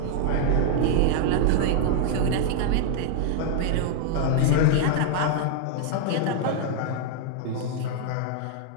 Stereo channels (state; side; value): different; both; correlation 0.00